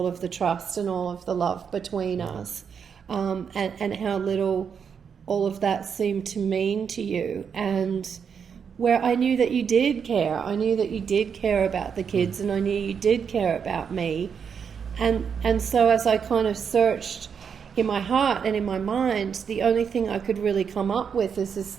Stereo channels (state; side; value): quieter; left; 6.9 dB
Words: of the trust and all of the love between us, and how little all of that seemed to mean to you. And where I knew that you did care. I knew that you did care about the kids, and I knew you did care about me. And so as I kind of searched in my heart and in my mind, the only thing I could really come up with is